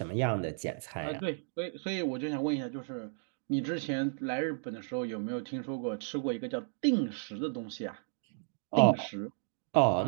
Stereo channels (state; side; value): silent; left; digital silence